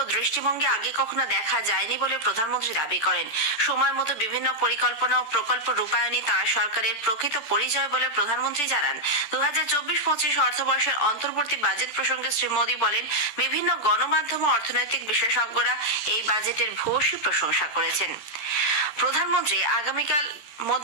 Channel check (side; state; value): right; late; 14 ms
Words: দৃষ্টিভঙ্গি আগে কখনো দেখা যায়নি বলে প্রধানমন্ত্রী দাবি করেন। সময় মতো বিভিন্ন পরিকল্পনা ও প্রকল্প রূপায়ণই তাঁর সরকারের প্রকৃত পরিচয় বলে প্রধানমন্ত্রী জানান। 2024-25 অর্থবর্ষের অন্তর্বর্তী বাজেট প্রসঙ্গে শ্রী মোদী বলেন, বিভিন্ন গণমাধ্যম ও অর্থনৈতিক বিশেষজ্ঞরা এই বাজেটের ভূয়সী প্রশংসা করেছেন। প্রধানমন্ত্রী আগামীকাল